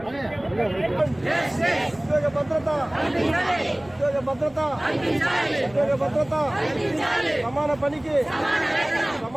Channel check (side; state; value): left; noise; rumble, 25 dB below the sound